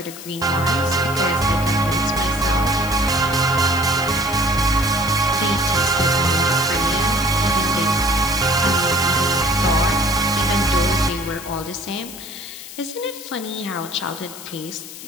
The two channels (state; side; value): noise; left; hiss, 13 dB below the sound